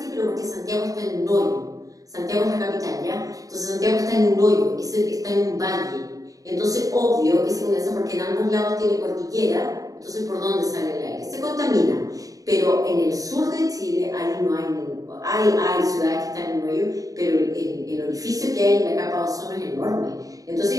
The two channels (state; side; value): late; left; 0.17 ms